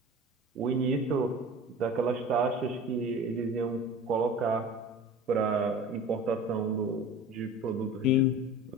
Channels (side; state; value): both; normal; correlation 0.38